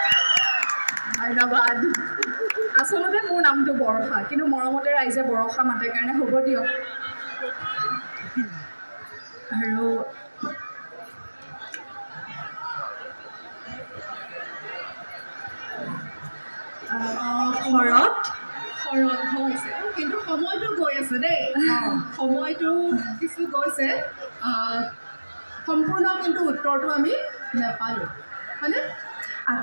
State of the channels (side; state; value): both; inverted; correlation -1.00